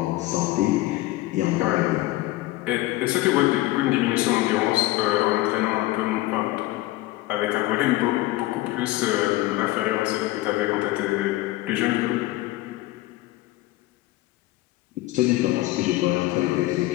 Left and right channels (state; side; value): quieter; right; 17.8 dB